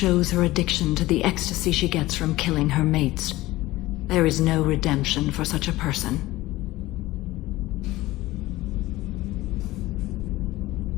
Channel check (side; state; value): right; quieter; 17.9 dB